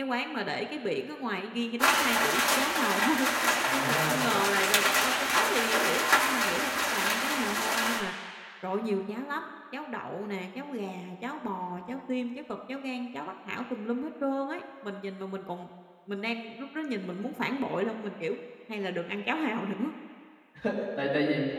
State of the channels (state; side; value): identical; both; correlation 1.00